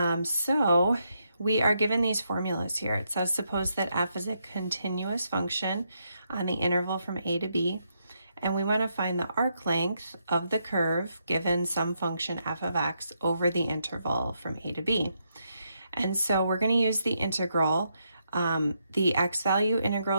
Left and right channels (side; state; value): both; inverted; correlation -0.79